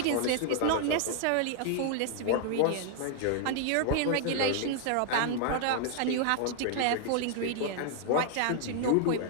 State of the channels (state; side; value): different; both; correlation 0.00